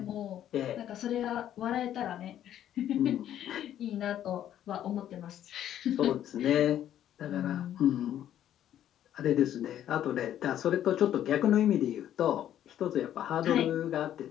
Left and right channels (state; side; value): quieter; right; 11.2 dB